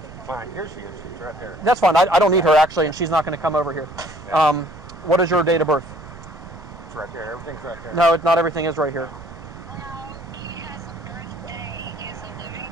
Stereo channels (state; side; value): noise; right; rumble, 17 dB below the sound